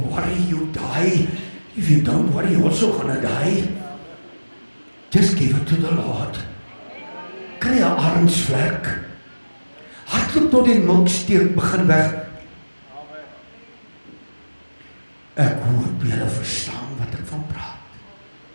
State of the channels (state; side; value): inverted; both; correlation -1.00